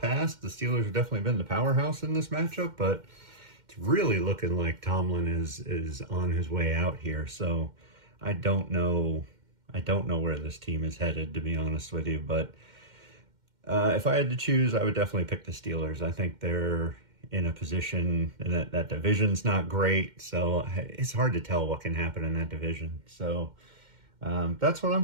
the Steelers have definitely been the powerhouse in this matchup, but it's really looking like Tomlin is on his way out here. So I don't know where this team is headed, to be honest with you. But if I had to choose, I would definitely pick the Steelers. I think they're in a position, and that division's not great, so it's hard to tell what can happen in that division. So that's what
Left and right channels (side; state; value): left; late; 2.1 ms